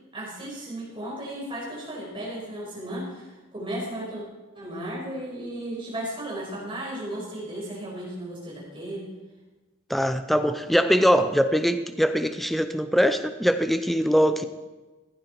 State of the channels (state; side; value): normal; both; correlation 0.86